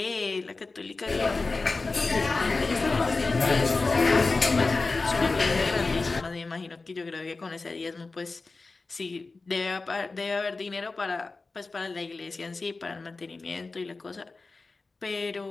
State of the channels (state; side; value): quieter; right; 3.7 dB